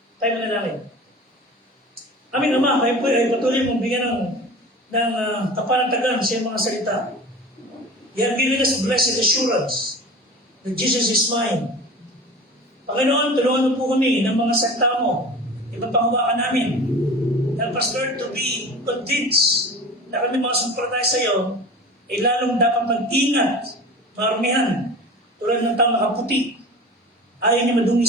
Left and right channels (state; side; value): normal; both; correlation 0.36